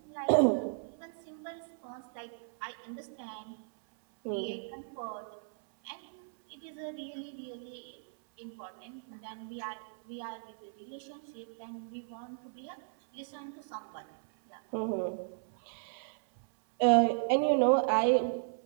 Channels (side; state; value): left; silent; 54 dB below the other